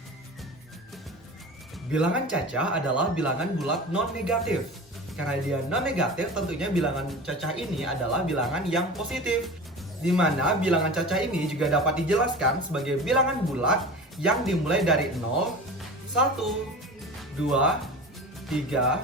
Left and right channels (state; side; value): normal; both; correlation 0.34